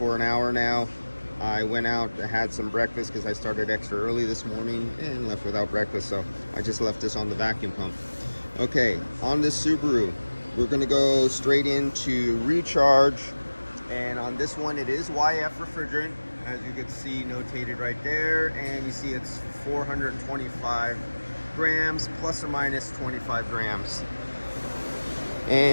an hour now. I went out, had some breakfast because I started extra early this morning and left without breakfast, so I just left this on the vacuum pump. Okay, on this Subaru, we're going to go straight into recharge, and on this one it is YF refrigerant, as you can see notated right there, and you see it's 425 grams plus or minus 25 grams.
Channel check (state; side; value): inverted; both; correlation -1.00